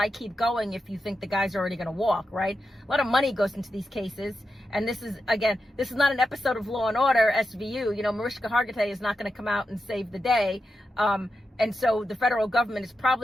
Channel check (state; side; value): normal; both; correlation 0.89